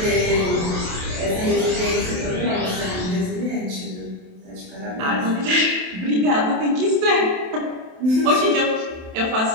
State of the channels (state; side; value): late; left; 27 ms